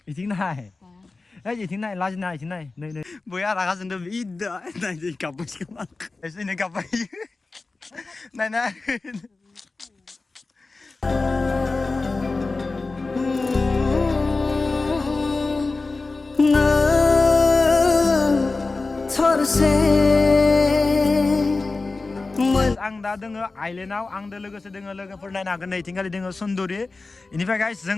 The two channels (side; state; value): right; quieter; 3.6 dB